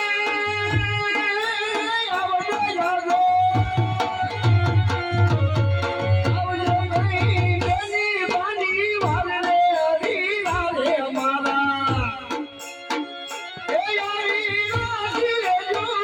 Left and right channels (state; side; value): identical; both; correlation 1.00